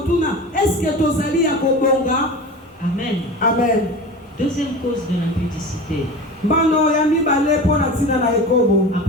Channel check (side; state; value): both; normal; correlation 0.32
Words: eske tozali ya kobonga? Amen. Amen. Deuxième cause de l'impudicité. Bano ya mibale pona tina na ekobo.